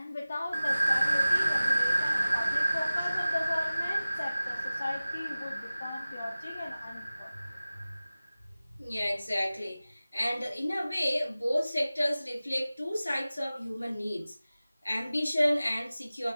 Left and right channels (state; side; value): inverted; both; correlation -0.97